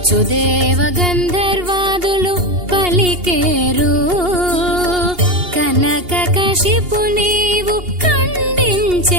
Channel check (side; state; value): left; late; 2.8 ms